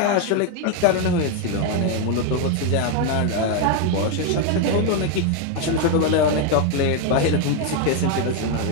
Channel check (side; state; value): both; different; correlation 0.01